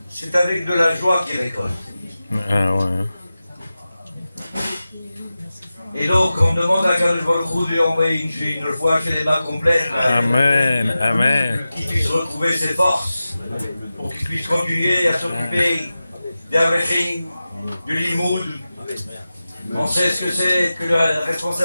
c'est avec de la joie qu'ils récoltent. Ah ouais. Et donc, on demande à Kadosh Baruch Hu de lui envoyer une foi chez les mains complètes. Amen, amen. Qu'il puisse retrouver ses forces, pour qu'il puisse continuer à s'occuper d'Avechim, du Limoud. On sait ce que c'est que la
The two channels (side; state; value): both; inverted; correlation -0.94